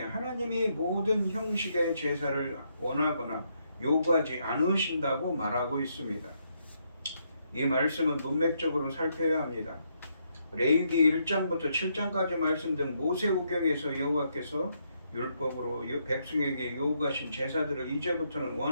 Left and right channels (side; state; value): both; inverted; correlation -0.76